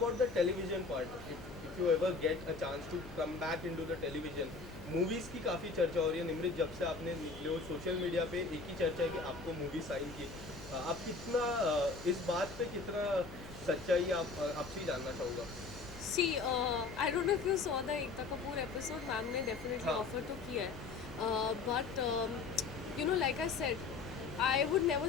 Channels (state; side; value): quieter; right; 4.3 dB